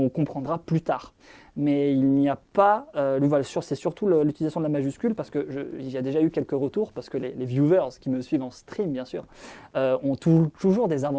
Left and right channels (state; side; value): identical; both; correlation 1.00